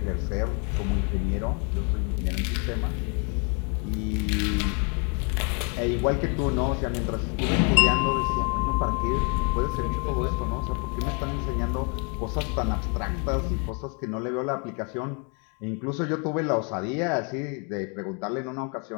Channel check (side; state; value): right; quieter; 36.7 dB